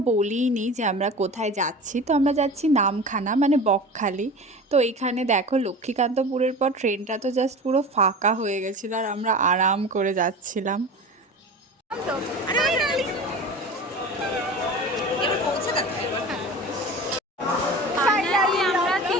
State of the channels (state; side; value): normal; both; correlation 0.34